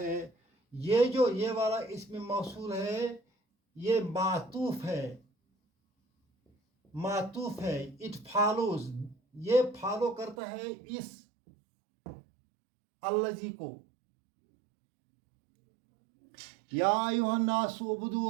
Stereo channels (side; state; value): left; drops out; at 10.4 s